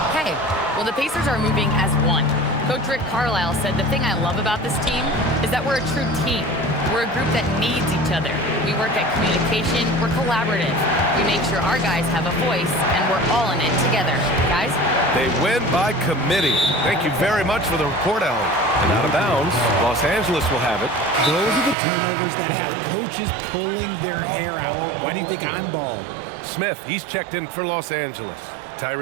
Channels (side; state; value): left; drops out; at 21.8 s